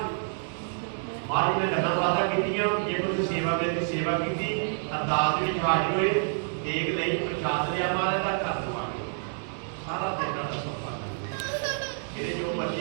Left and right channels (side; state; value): left; silent; digital silence